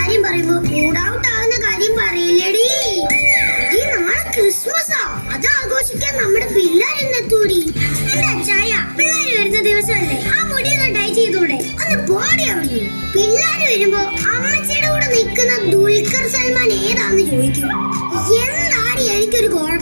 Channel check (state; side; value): inverted; both; correlation -1.00